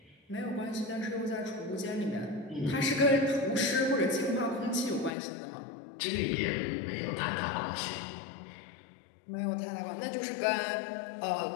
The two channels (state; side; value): drops out; right; at 5.1 s